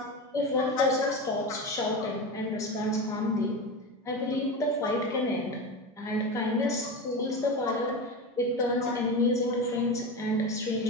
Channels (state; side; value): normal; both; correlation 0.23